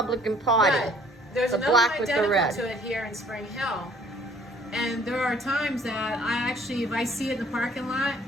Party. But there's The another black one with the identical red. to it here in Spring Hill. And there are times that I actually, if I see it in the parking lot,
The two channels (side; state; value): both; normal; correlation 0.57